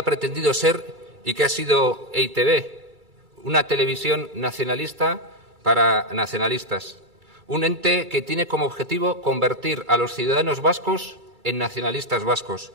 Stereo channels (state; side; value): late; left; 2.3 ms